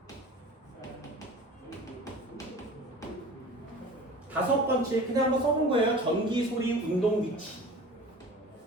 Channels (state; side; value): normal; both; correlation 0.40